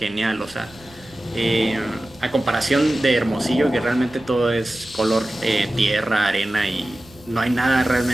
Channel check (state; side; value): noise; right; rumble, 24 dB below the sound